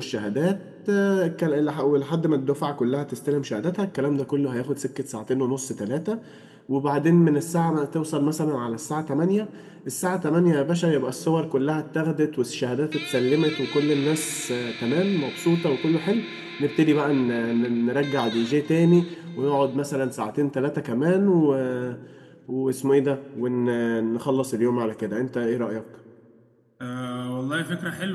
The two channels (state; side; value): identical; both; correlation 1.00